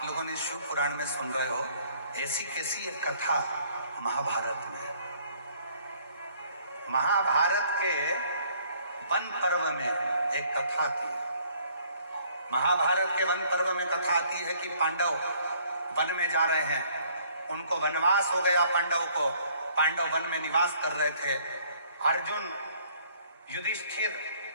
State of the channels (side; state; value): both; inverted; correlation -0.61